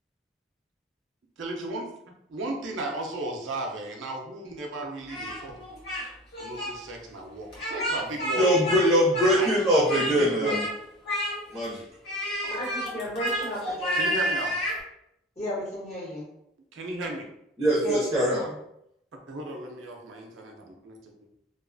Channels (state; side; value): normal; both; correlation 0.35